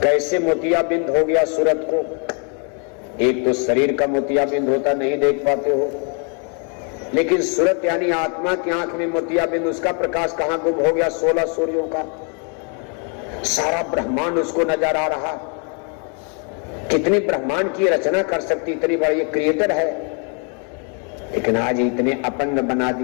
कैसे मोतियाबिंद हो गया सूरत को? एक तो शरीर का मोतियाबिंद होता, नहीं देख पाते हो, लेकिन सूरत यानी आत्मा की आंख में मोतियाबिंद, उसका प्रकाश कहां गुम हो गया? 16 सूर्यों का सारा ब्रह्मांड उसको नजर आ रहा। कितनी ब्रह्मांड की रचना कर सकती, इतनी बड़ी ये क्रिएटर है, लेकिन आज इतने अपंग बना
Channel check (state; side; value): quieter; right; 38.9 dB